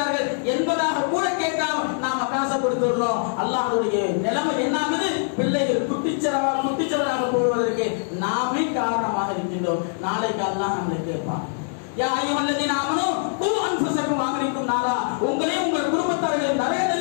என்பதாக கூட கேட்காம நாம காசை கொடுத்துடுறோம். அல்லாஹ்வுடைய நிலைமை என்ன ஆகுது? பிள்ளைகள் குட்டிச்சவராக போவதற்கு நாமே காரணமாக இருக்கின்றோம். நாளைக்கு அல்லாஹ் நம்மளை கேட்பான், யா அய்யுஹல்லதீன ஆமனூ கூ அன்ஃபுஸக்கும் வஅஹ்லிக்கும் நாரா, உங்களையும் உங்கள் குடும்பத்தார்களையும் நரக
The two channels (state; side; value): silent; right; digital silence